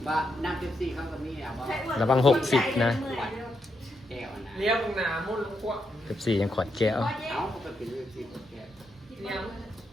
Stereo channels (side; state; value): both; normal; correlation 0.82